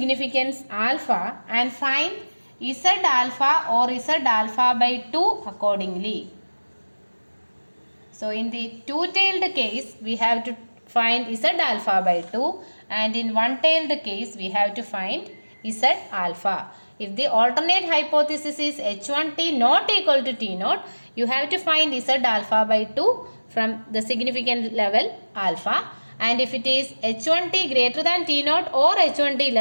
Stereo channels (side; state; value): both; inverted; correlation -1.00